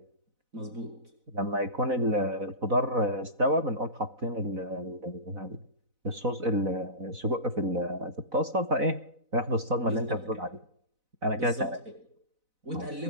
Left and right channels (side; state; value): left; late; 4.0 ms